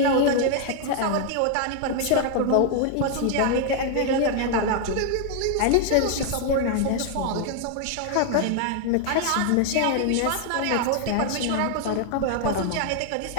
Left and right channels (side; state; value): both; different; correlation 0.00